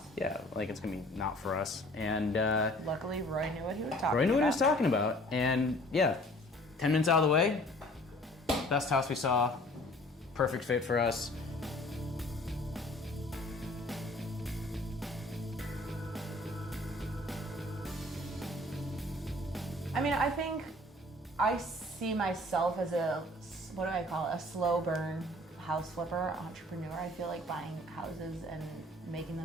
yeah, like it's gonna be not for us. And Luckily, Roy knew what he was talking about. Roy knew what he was talking about. And yeah, 10 minutes out of the way, best house we saw, perfect fit for us. I mean, I think I see myself as a, what do I call it, a slow burn house flipper, entrepreneur. I feel like buying houses and making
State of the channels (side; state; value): both; normal; correlation 0.52